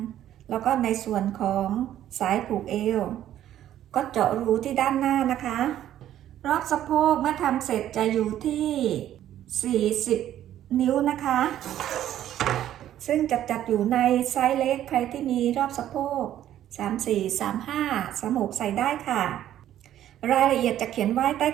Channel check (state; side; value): quieter; left; 11.8 dB